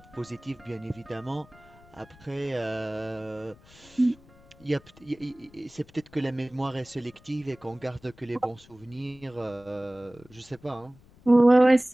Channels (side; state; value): left; noise; rumble, 25 dB below the sound